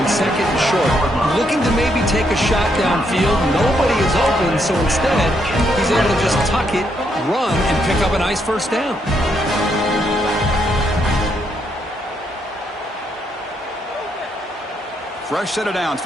2nd and short. Looking to maybe take a shot downfield. Nobody is open, so instead, he's able to just tuck it, run, and pick up a nice first down. Fresh set of downs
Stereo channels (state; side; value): normal; both; correlation 0.76